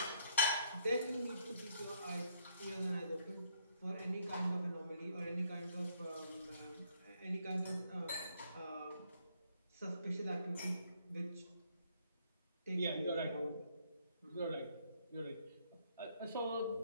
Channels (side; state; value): both; inverted; correlation -0.69